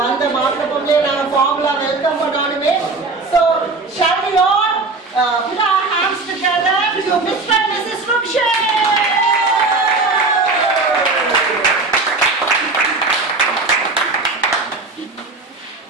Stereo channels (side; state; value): left; quieter; 3.6 dB